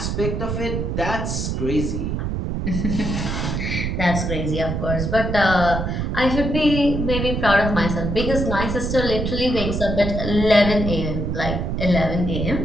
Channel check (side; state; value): right; noise; rumble, 2 dB below the sound